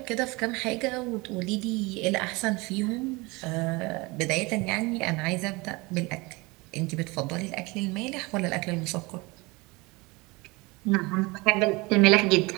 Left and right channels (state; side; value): quieter; left; 24.7 dB